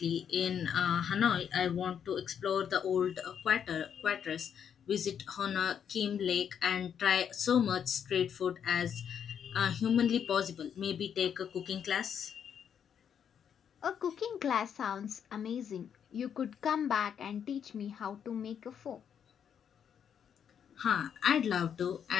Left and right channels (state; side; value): quieter; right; 8.2 dB